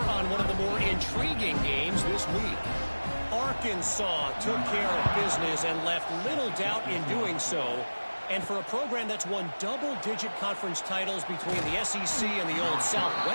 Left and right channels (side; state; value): both; inverted; correlation -1.00